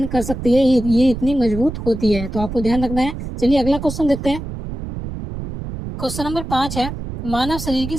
कर सकती है। ये इतनी मजबूत होती है। तो आपको ध्यान रखना है। चलिए अगला क्वेश्चन देखते हैं, क्वेश्चन नंबर 5 है, मानव शरीर की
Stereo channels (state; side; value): noise; right; rumble, 8 dB below the sound